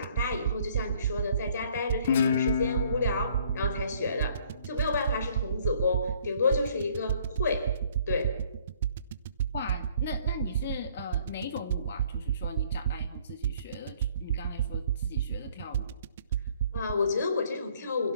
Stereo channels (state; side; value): inverted; both; correlation -0.60